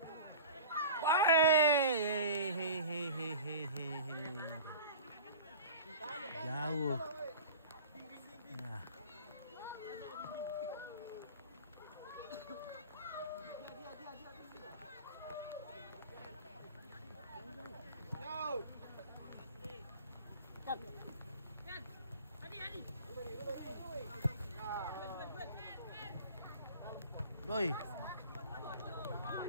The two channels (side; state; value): both; inverted; correlation -0.38